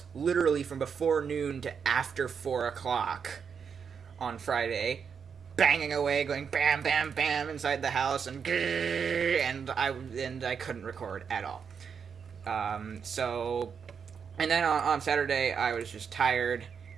literally from before noon to after 4 o'clock on Friday, banging away, going bam, bam, bam inside the house, and I couldn't record at all. And then on Saturday I was just tired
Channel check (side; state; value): left; quieter; 6.6 dB